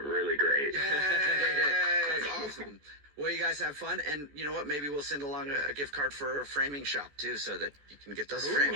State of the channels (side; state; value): left; late; 14 ms